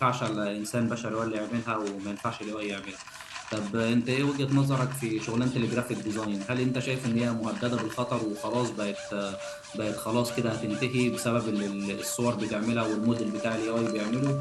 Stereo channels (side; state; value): both; identical; correlation 1.00